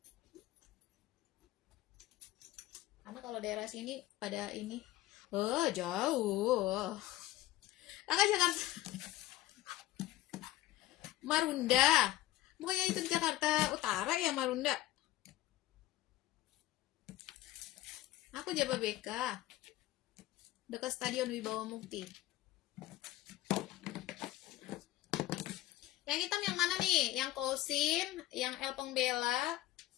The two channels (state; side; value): quieter; right; 15.5 dB